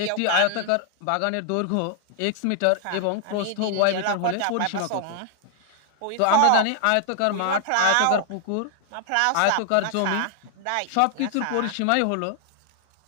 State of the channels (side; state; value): both; different; correlation 0.00